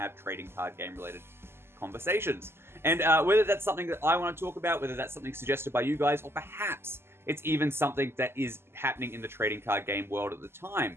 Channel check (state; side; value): late; left; 0.12 ms